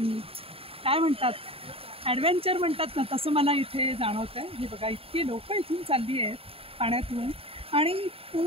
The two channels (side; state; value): left; late; 0.27 ms